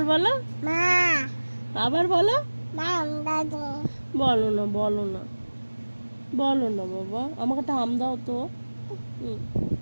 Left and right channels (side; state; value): both; inverted; correlation -1.00